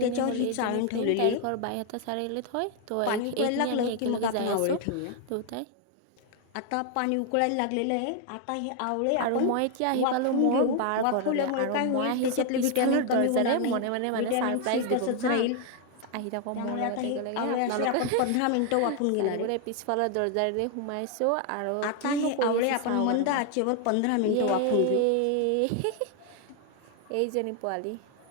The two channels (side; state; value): both; different; correlation 0.01